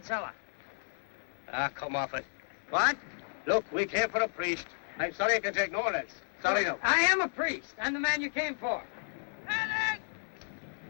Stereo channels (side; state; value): right; silent; 56 dB below the other